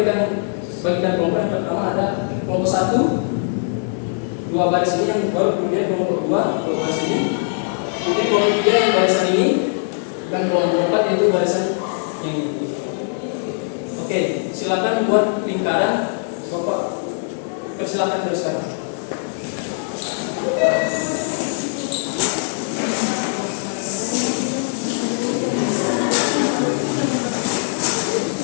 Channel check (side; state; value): right; silent; digital silence